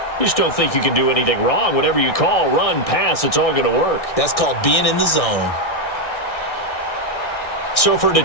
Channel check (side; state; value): right; late; 1.6 ms